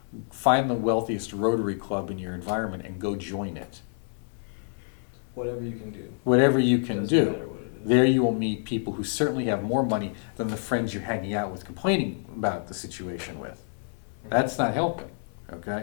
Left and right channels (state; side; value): silent; right; digital silence